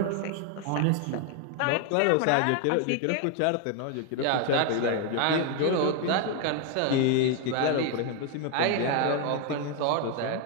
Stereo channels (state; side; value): different; both; correlation 0.01